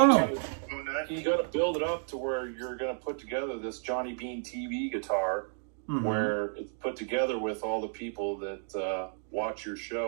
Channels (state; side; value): silent; left; 57 dB below the other